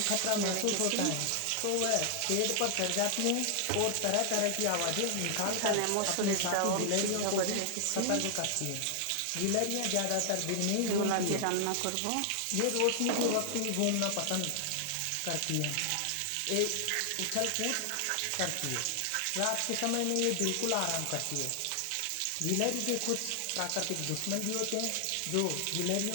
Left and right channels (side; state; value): both; different; correlation 0.00